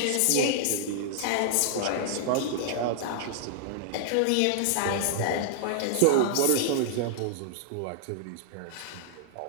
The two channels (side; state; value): both; different; correlation -0.01